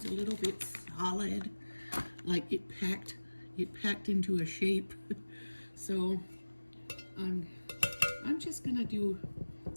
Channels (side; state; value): both; inverted; correlation -1.00